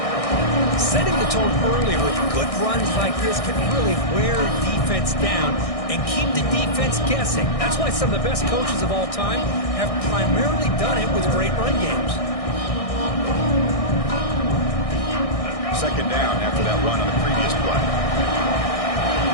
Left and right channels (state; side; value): late; right; 1.6 ms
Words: Setting the tone early with good runs like this can really wear defense down and keep the defense guessing. That's why some of the best coaches of all time have primarily done it with great run games. Second down after that run on the previous play.